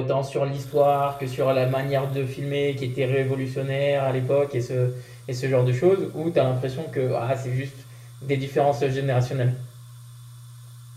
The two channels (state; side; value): identical; both; correlation 1.00